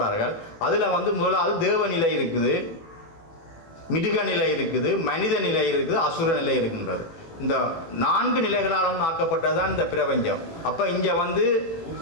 அதில் முதலாவது தேவநிலை இருக்குது, மிருக நிலை இருக்குது, மனித நிலை இருக்குது, அசுர நிலை இருக்கின்றது. இந்த 4 நிலைகளாலும் ஆக்கப்பட்டதுதான் இந்த பிரபஞ்சம். அப்போ இங்கே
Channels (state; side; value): late; right; 18 ms